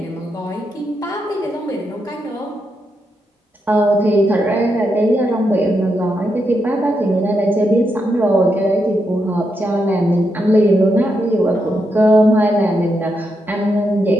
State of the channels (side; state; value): both; normal; correlation 0.83